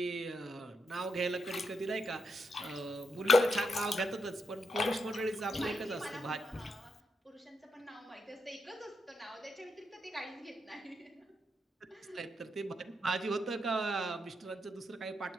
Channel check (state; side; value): normal; both; correlation 0.82